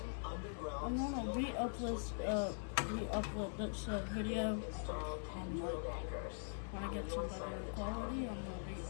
underground I'm gonna steel anchors to its base. re-upload this video. Install 10 drilled anchors. When I get some better quality, I'm gonna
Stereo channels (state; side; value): silent; right; digital silence